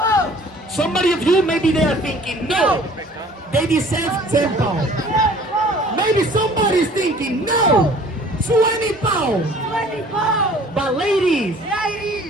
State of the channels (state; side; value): normal; both; correlation 0.51